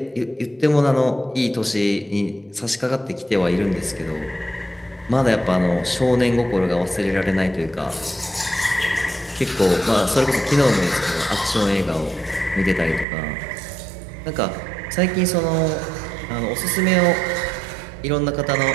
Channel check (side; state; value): left; drops out; at 13.1 s